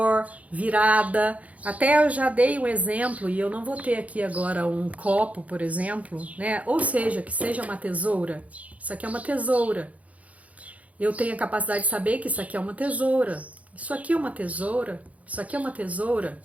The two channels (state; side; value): late; left; 0.068 ms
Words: virada. Até eu já dei um exemplo, e eu não vou ter aqui agora um copo, por exemplo, né? Ou seja, que seja uma tesoura. Isso aqui é uma tesoura. Eu tenho a capacidade de saber que isso aqui é uma tesoura. Isso aqui é uma tesoura. Isso aqui é uma tesoura.